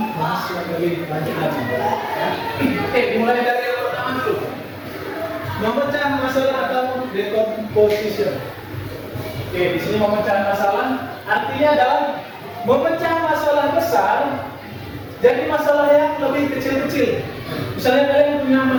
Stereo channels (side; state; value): both; identical; correlation 1.00